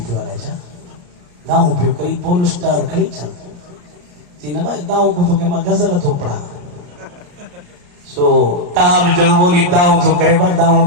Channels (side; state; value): left; late; 34 ms